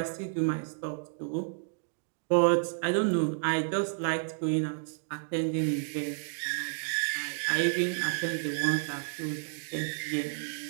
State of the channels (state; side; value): silent; left; digital silence